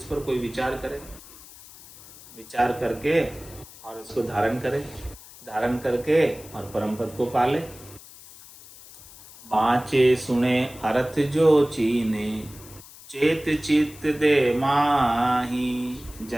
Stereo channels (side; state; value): left; noise; hiss, 19 dB below the sound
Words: पर कोई विचार करे, विचार करके और इसको धारण करे, धारण करके और परम पद को पाले। बाँचे सुने अर्थ जो चीने, चेत चित्त दे माही,